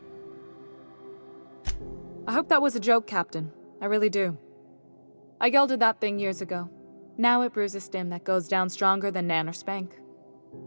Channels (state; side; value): inverted; both; correlation -1.00